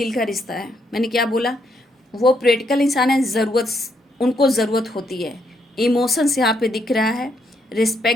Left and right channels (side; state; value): both; normal; correlation 0.75